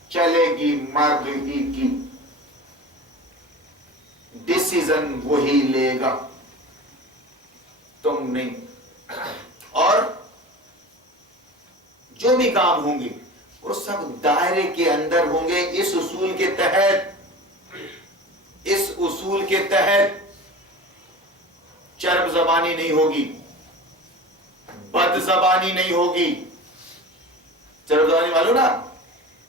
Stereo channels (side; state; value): both; normal; correlation 0.34